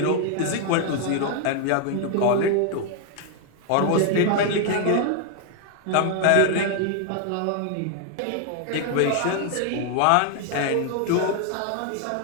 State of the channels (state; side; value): different; both; correlation 0.00